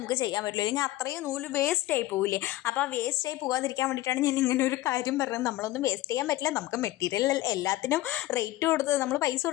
ചെയ്യാൻ പറ്റില്ല, അല്ലെങ്കിൽ അത്രയും നൂല് വേസ്റ്റായി പോവില്ലേ. അപ്പോൾ ആ വേസ്റ്റായി പോകാതിരിക്കാൻ വേണ്ടിയിട്ടാണ് ഞാൻ ഇങ്ങനെ ഒരു കാര്യം പറഞ്ഞത്. നമ്മളൊന്നും വേസ്റ്റ് ചെയ്യാൻ പറ്റില്ല, നമുക്ക് മെറ്റീരിയൽ എല്ലാത്തിനും റേറ്റ് കൊടുത്ത് നമ്മൾ പൈസ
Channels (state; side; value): quieter; right; 16.8 dB